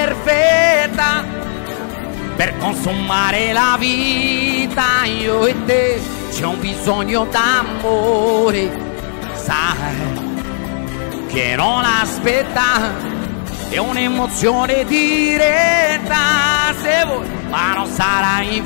per consumare la vita. Io e te c'è un bisogno d'amore, sai che non aspetta, è un'emozione diretta, se vuoi, ma non sarà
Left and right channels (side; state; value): right; silent; digital silence